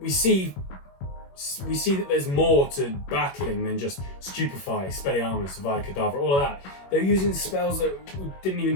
see that there's more to battling than just Stupefy, Expelliarmus, Avada Kedavra, all of that. They're using spells that we didn't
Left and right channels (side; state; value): right; late; 21 ms